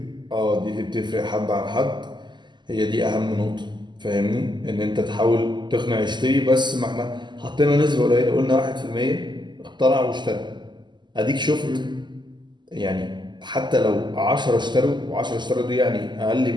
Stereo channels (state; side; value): late; left; 0.21 ms